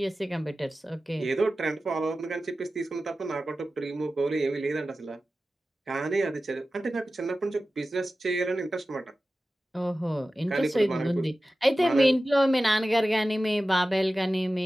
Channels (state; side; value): normal; both; correlation 0.95